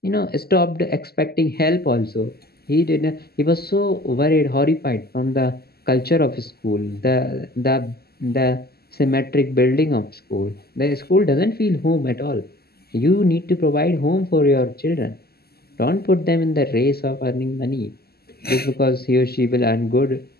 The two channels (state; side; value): late; right; 0.46 ms